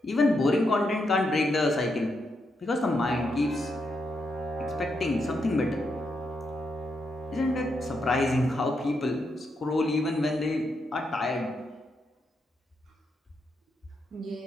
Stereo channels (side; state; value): both; normal; correlation 0.82